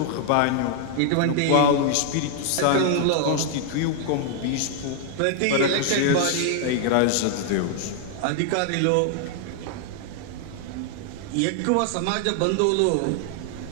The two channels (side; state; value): both; different; correlation 0.00